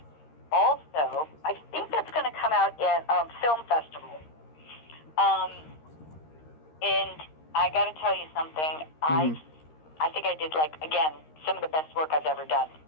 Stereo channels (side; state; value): right; late; 13 ms